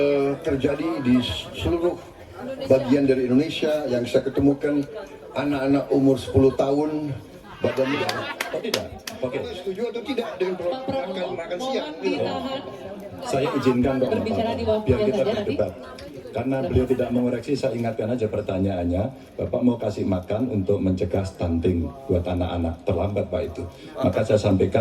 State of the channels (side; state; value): both; identical; correlation 1.00